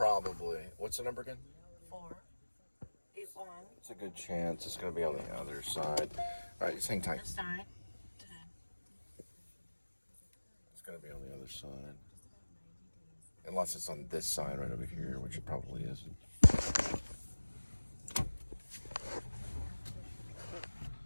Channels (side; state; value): both; inverted; correlation -1.00